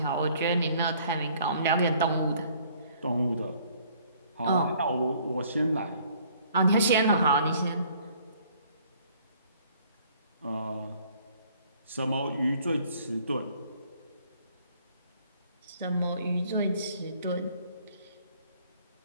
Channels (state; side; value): inverted; both; correlation -0.59